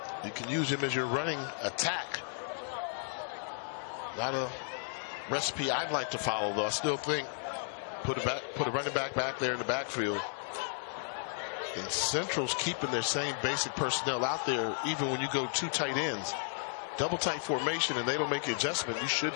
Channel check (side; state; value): right; silent; 55 dB below the other